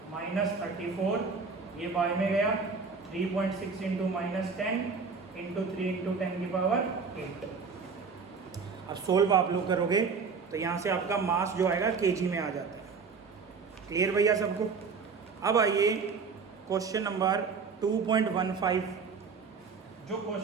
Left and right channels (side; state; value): left; quieter; 5.1 dB